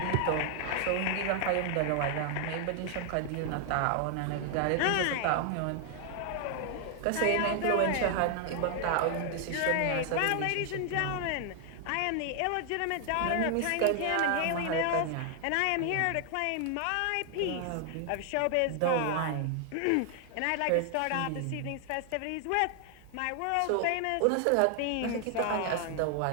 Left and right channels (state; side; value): different; both; correlation 0.00